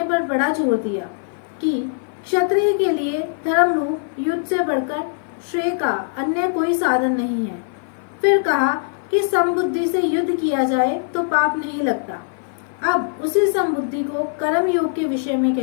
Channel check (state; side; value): silent; right; 55 dB below the other